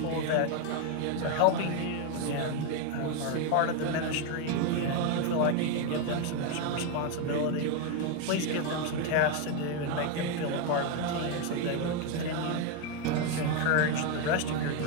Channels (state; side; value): different; both; correlation 0.01